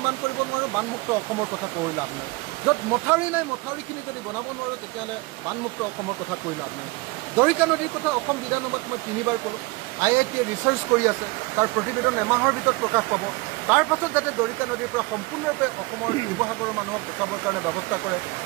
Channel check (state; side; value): quieter; left; 23.7 dB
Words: কৰিব নোৱাৰোঁ বানমুক্ত অসমৰ কথা কৈ লাভ নাই। য'ত মথাউৰি নাই মথাউৰিখিনি যদি বনাব নোৱাৰোঁ তেতিয়াহ'লে বানমুক্ত অসমৰ কথা কৈ লাভ নাই। দৰিকা নদীৰ কথা অসম বিধানসভাত মই 3বাৰ ক'লোঁ। IITয়ে ৰিচাৰ্চ কৰি আছে, তাৰ প্ৰতিবেদন এমাহৰ ভিতৰত প্ৰকাশ পাব। তাৰ পাছত যাতে দৰিকা নদীৰ পৰা সম্পূৰ্ণৰূপে অসমৰ শিৱসাগৰৰ মানুহক বচাবৰ কাৰণে ব্যৱস্থা কৰে